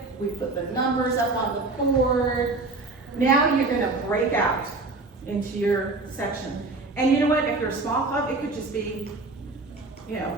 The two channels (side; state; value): left; quieter; 3.4 dB